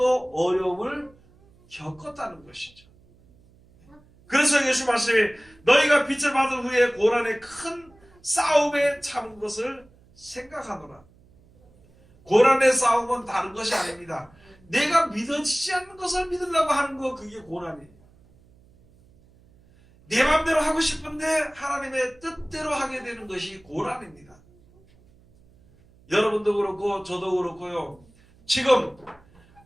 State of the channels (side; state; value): right; noise; hum, 29 dB below the sound